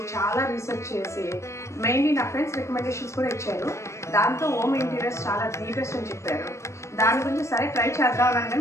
చాలా రీసెర్చ్ చేసి మెయిన్లీ నా ఫ్రెండ్స్ రికమెండేషన్స్ కూడా ఇచ్చారు. దాంతో హోమ్ ఇంటీరియర్స్ చాలా ది బెస్ట్ అని చెప్పారు. దాని గురించి సరే ట్రై చేద్దామని,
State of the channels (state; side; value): late; right; 0.14 ms